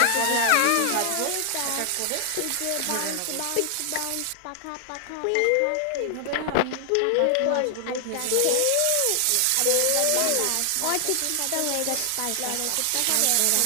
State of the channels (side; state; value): both; different; correlation 0.00